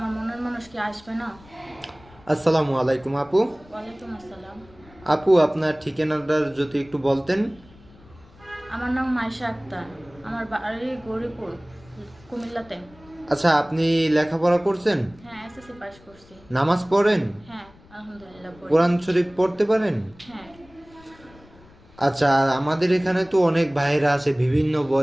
মনের মানুষ কি আসবে না? আসসালামু আলাইকুম আপু। ওয়ালাইকুম আসসালাম। আপু, আপনার ঠিকানাটা যদি একটু বলতেন। আমার নাম মাইশা আক্তার। আমার বাড়ি গৌরীপুর, কুমিল্লাতে। আচ্ছা, আপনি লেখাপড়া করছেন? হ্যাঁ, এসএসসি পাস করছি। নামাজ পড়েন? হ্যাঁ, আলহামদুলিল্লাহ পড়ি। কোরআন শরীফ পড়তে পারেন? হ্যাঁ। আচ্ছা, আমাদের এখানে তো অনেক ভাইরা আছে বিভিন্ন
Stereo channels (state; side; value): noise; left; rumble, 25 dB below the sound